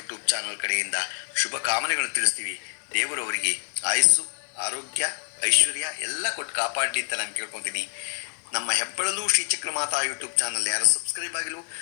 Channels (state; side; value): silent; right; digital silence